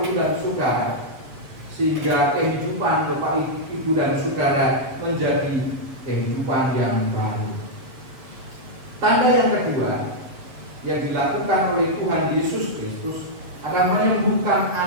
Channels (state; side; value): late; left; 7.5 ms